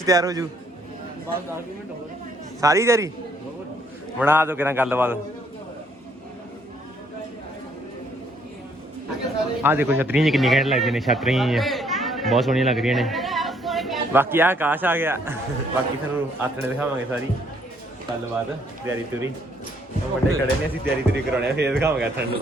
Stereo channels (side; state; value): both; normal; correlation 0.67